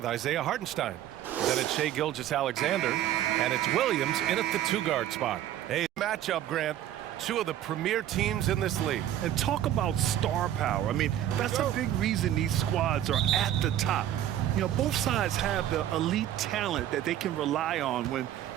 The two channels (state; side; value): quieter; left; 11.8 dB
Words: Isaiah Hartenstein. Then it's Shai Gilgeous-Alexander, and it's Williams in at the 2-guard spot. Hey, matchup, Grant. Two of the premier teams in this league. And talk about star power. I mean, that's a big reason these squads are at the top. You know, both sides have the elite talent that they can rely on when